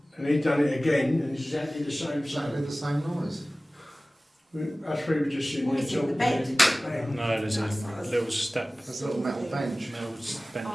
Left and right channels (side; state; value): both; normal; correlation 0.97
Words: And he done it again, and it's exactly the same Exactly sound. the same noise. Us three were just sitting What there is it, the talking. bed? and bang. No, there's a little step, There's a little metal bench. metal bench. Oh,